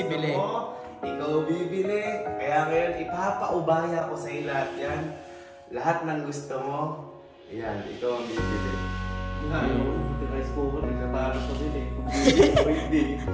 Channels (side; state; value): both; identical; correlation 1.00